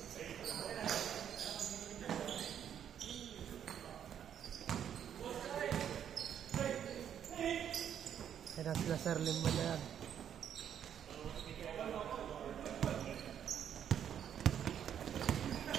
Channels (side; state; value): left; quieter; 9.2 dB